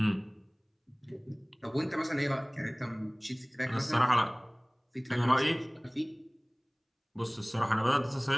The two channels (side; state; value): both; identical; correlation 1.00